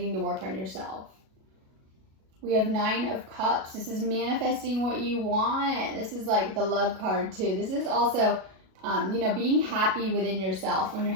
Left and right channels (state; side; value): late; left; 37 ms